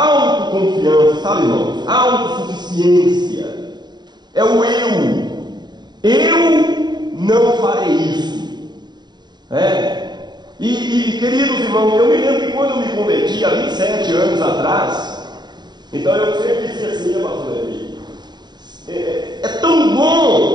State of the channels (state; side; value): late; left; 0.21 ms